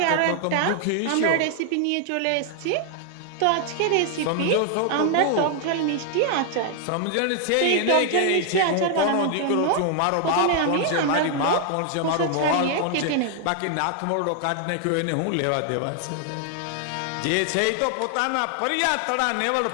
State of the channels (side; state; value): both; different; correlation 0.00